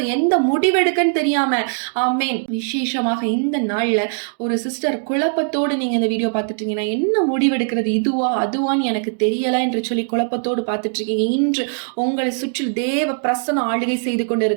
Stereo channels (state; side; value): silent; left; digital silence